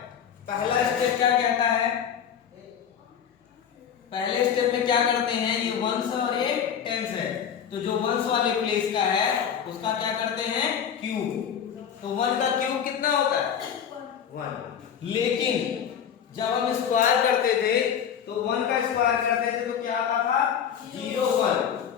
पहला स्टेप क्या कहता है? पहले स्टेप में क्या करते हैं? ये वंस और ये टेंस है, तो जो वंस वाले प्लेस का है उसका क्या करते हैं? क्यूब। तो 1 का क्यूब कितना होता है? 1। लेकिन जब हम स्क्वायर करते थे तो 1 का स्क्वायर करते थे तो क्या आता था? 0, 1।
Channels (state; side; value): quieter; right; 8.3 dB